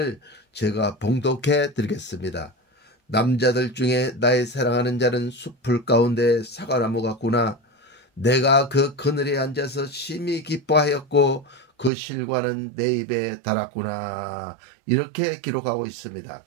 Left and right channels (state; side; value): drops out; left; at 11.9 s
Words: 제가 봉독해 드리겠습니다. 남자들 중에 나의 사랑하는 자는 숲풀 가운데 사과나무 같구나. 내가 그 그늘에 앉아서 심히 기뻐하였고 그 실과는 내 입에 달았구나. 이렇게 기록하고 있습니다.